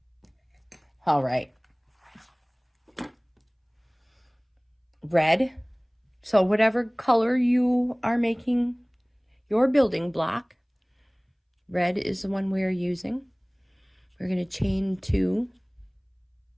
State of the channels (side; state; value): both; identical; correlation 1.00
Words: All right. Red. So whatever color you are making your building block, red is the one we are using. We're going to chain 2.